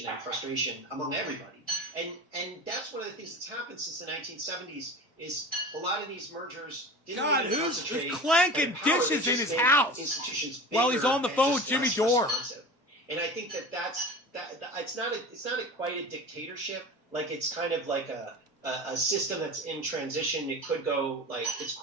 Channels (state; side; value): normal; both; correlation 0.34